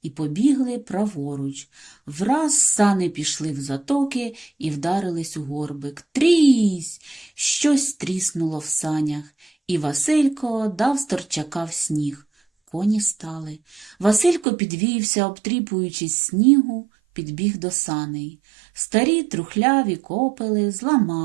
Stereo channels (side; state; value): left; drops out; at 14.5 s